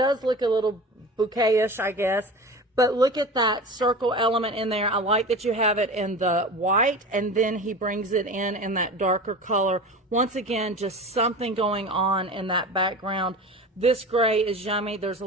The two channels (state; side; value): normal; both; correlation 0.33